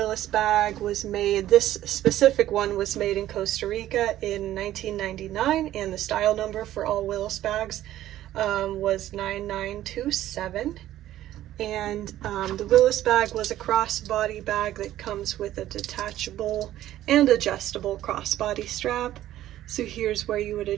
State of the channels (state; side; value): quieter; left; 13.4 dB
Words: bag was made, this specific one was made in Costa Rica in 1999, and the style number for all Willis bags was 9927. And the Willis bag was a crossbody bag that comes with a detachable and adjustable crossbody strap. So here's where you would